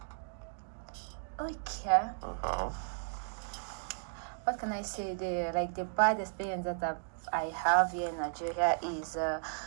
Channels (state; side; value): silent; left; digital silence